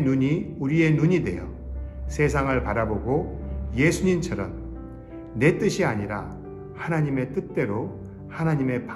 눈이 우리의 눈이 되어 세상을 바라보고 예수님처럼 내 뜻이 아니라 하나님의 뜻대로 하나님의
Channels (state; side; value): identical; both; correlation 1.00